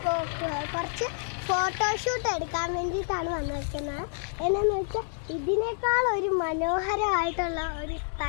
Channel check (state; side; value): silent; right; digital silence